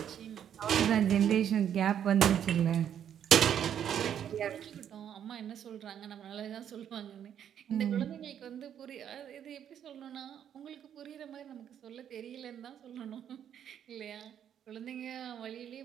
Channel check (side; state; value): left; quieter; 9.4 dB